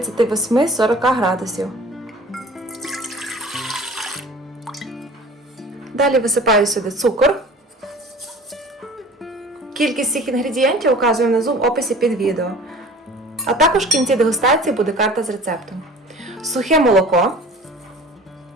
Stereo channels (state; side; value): normal; both; correlation 0.44